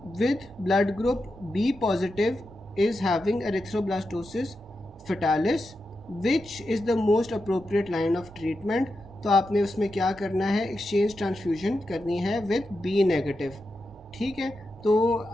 with blood group B positive is having erythroblastosis fetalis which is the most appropriate line of treatment। तो आपने उसमें क्या करना है, एक्सचेंज ट्रांसफ्यूजन करनी है विद बी नेगेटिव, ठीक है। तो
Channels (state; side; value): normal; both; correlation 0.88